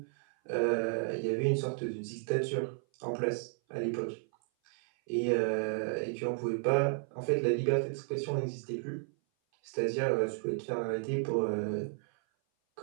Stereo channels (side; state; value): left; silent; 56 dB below the other